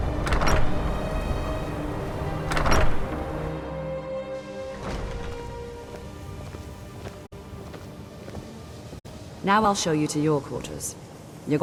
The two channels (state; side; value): identical; both; correlation 1.00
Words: Now I'll show you to your quarters. You're